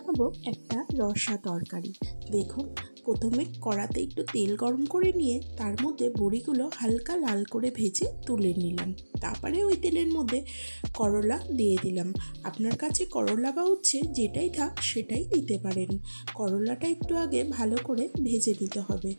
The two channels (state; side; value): inverted; both; correlation -1.00